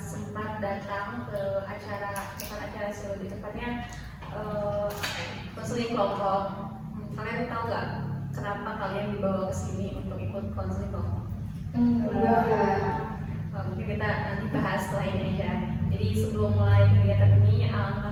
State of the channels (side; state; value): both; identical; correlation 1.00